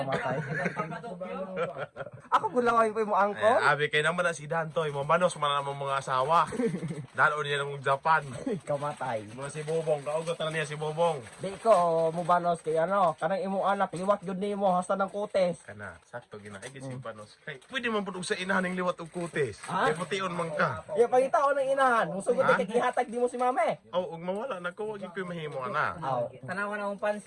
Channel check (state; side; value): identical; both; correlation 1.00